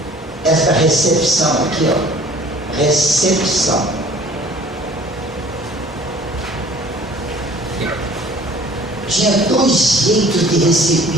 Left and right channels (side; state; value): both; normal; correlation 0.50